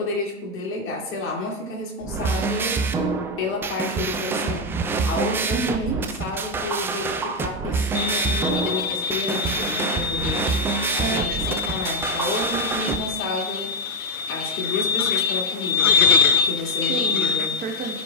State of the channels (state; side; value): normal; both; correlation 0.02